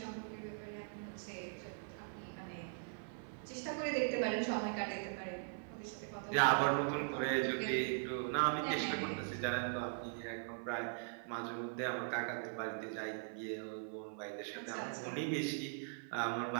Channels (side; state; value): left; silent; 51 dB below the other